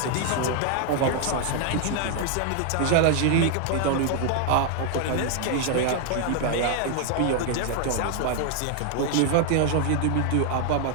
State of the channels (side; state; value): both; different; correlation 0.00